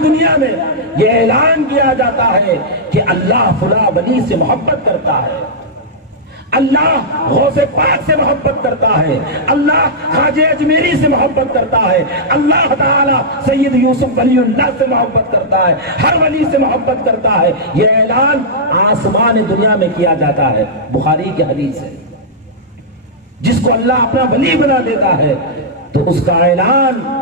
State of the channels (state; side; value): normal; both; correlation -0.10